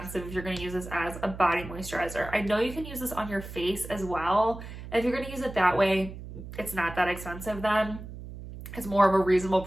if you're gonna use this as a body moisturizer. I know you can use this on your face as well. And if you're gonna use it that way, it's not that expensive then. It's more of a reasonable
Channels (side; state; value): right; noise; hum, 12 dB below the sound